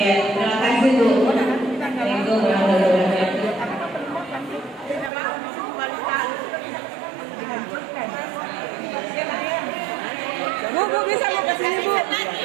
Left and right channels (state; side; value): drops out; left; at 5.1 s